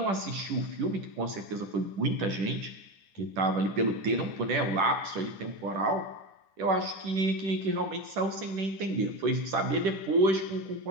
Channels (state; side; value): late; left; 10 ms